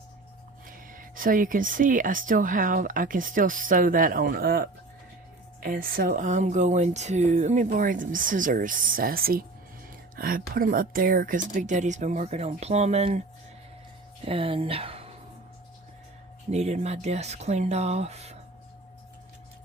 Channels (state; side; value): quieter; left; 3.1 dB